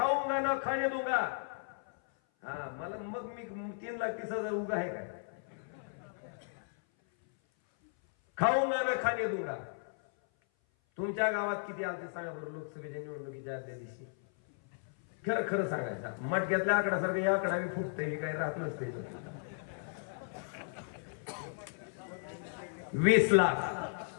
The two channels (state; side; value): silent; right; 54 dB below the other